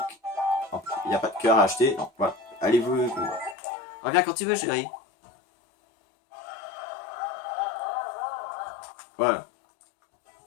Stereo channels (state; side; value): drops out; right; at 3.6 s